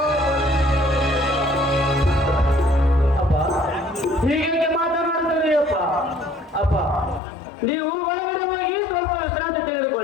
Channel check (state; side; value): drops out; right; at 7.2 s